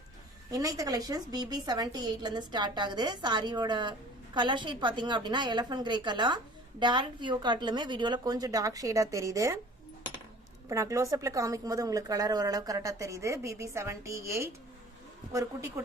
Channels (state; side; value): normal; both; correlation 0.47